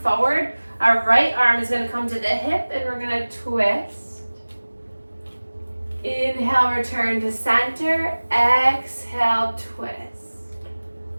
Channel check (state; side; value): inverted; both; correlation -1.00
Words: Our right arm is going to come to the hip and we're going to twist. Inhale, return to center. Exhale, twist.